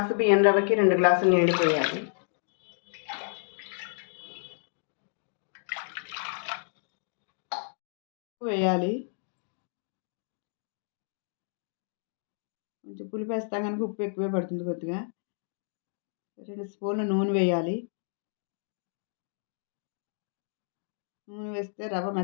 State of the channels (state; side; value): silent; right; digital silence